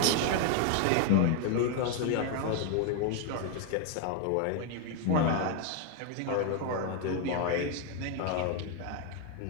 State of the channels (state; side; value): different; both; correlation 0.01